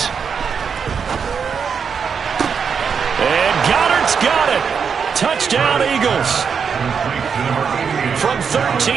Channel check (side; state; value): left; quieter; 6.4 dB